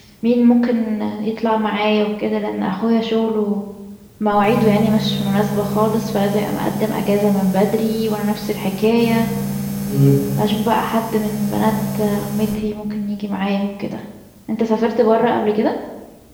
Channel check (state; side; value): identical; both; correlation 1.00